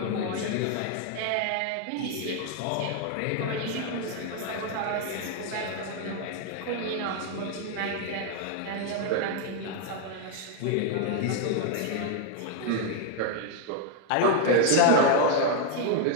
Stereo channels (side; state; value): both; different; correlation 0.01